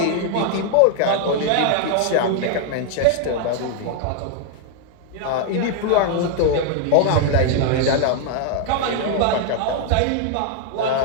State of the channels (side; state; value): both; different; correlation 0.00